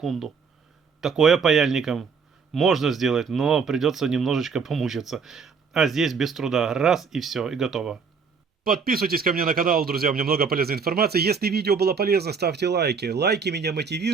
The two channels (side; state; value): left; quieter; 5.6 dB